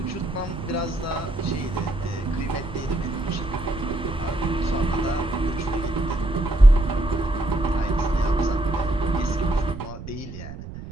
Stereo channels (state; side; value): noise; right; rumble, 11 dB below the sound